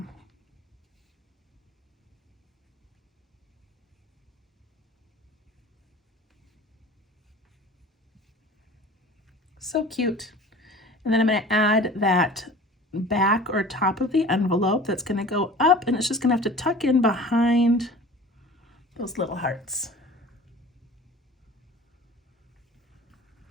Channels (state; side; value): normal; both; correlation 0.42